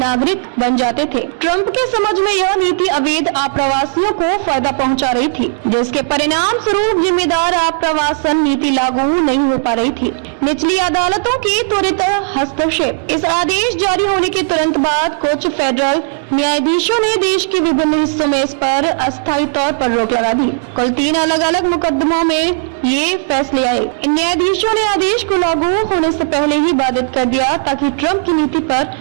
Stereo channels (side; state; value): left; silent; digital silence